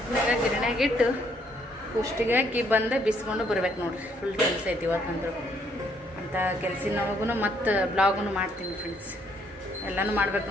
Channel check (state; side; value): normal; both; correlation 0.69